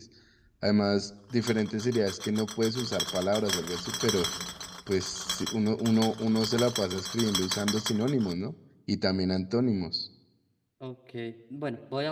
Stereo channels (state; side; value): identical; both; correlation 1.00